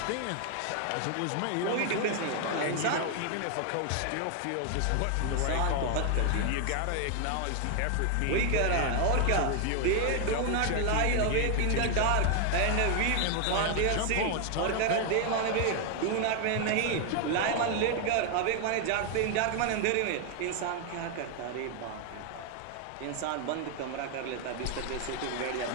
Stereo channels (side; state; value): both; different; correlation 0.00